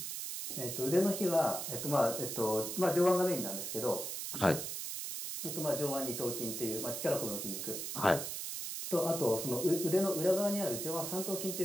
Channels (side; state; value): right; noise; hiss, 5 dB below the sound